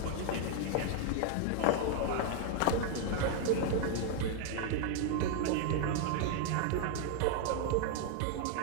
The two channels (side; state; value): both; different; correlation 0.00